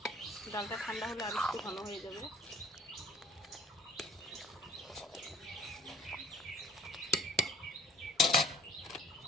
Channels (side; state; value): both; normal; correlation 0.49